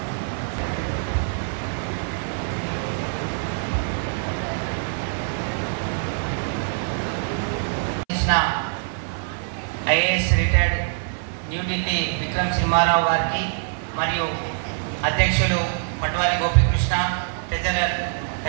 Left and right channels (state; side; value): silent; left; 62 dB below the other